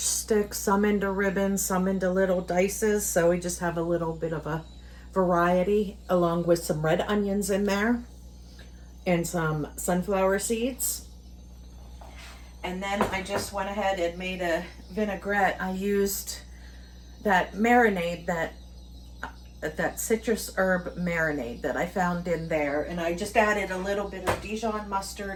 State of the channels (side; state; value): both; identical; correlation 1.00